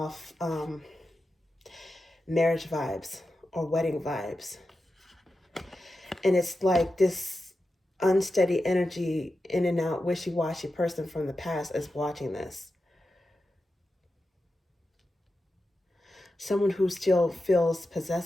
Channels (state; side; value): normal; both; correlation 0.91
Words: marriage vibes or wedding vibes. And it's like this unsteady energy, in and out, wishy-washy person from the past is watching this. Someone who still feels